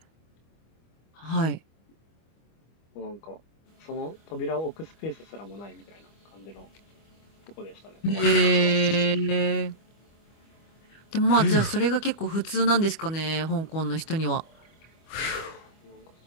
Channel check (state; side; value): late; right; 25 ms